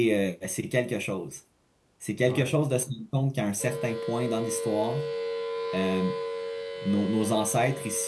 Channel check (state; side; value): identical; both; correlation 1.00